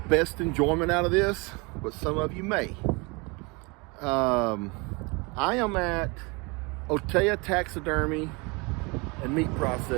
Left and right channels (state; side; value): quieter; left; 28.2 dB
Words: best enjoyment out of this, but some of you may. I am at Taxidermy and Meat